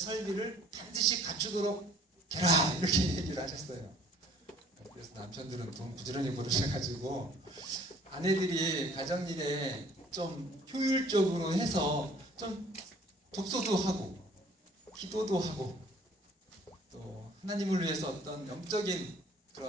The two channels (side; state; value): both; normal; correlation 0.55